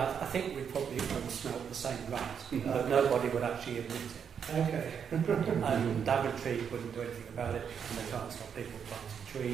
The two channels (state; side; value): quieter; left; 7.4 dB